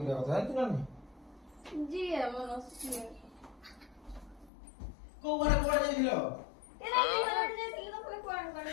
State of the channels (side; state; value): right; drops out; at 4.5 s